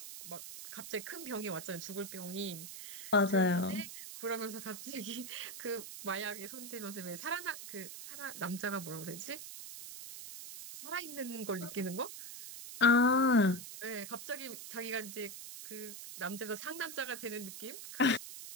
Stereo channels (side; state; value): right; noise; hiss, 10 dB below the sound